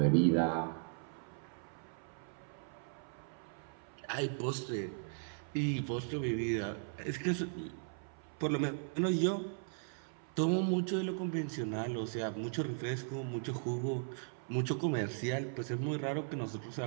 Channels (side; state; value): left; silent; 53 dB below the other